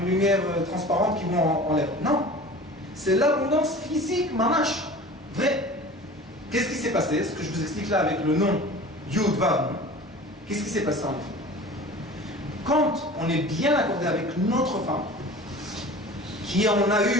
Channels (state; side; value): normal; both; correlation 0.40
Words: une lumière transparente qui va en l'air. Non. C'est l'abondance physique, mamash. Vrai. Qu'est-ce qui s'est passé? Ce que je vous explique là avec le nom Yud Vav. Qu'est-ce qui s'est passé en effet? Quand on est bien accordé avec notre femme, qui on a